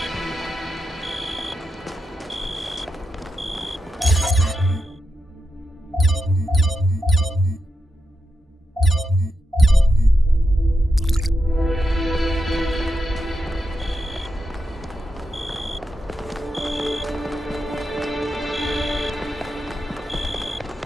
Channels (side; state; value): both; normal; correlation 0.86